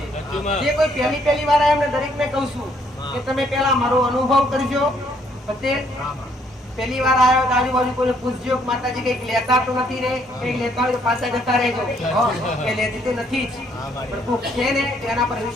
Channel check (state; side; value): normal; both; correlation 0.68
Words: જે કોઈ પહેલી વાર આવ્યા એમને દરેક ને કહું છું કે તમે પેલા મારો અનુભવ કરજો. પટેલ પહેલી વાર આવ્યો તો આજુબાજુ કોઈ પૂછજો માતાજી કઈક લેતા તો નથી ને, કઈક લેતા હોય તો પાછા જતા રહેજો. એ લેતી તો નથી જ, પણ કોઈક છે ને એના પર